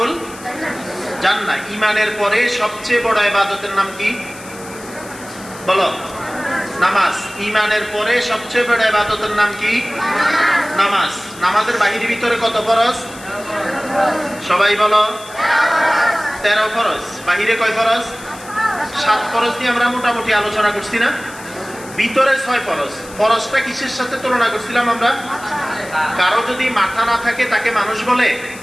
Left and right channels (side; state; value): left; noise; hiss, 18 dB below the sound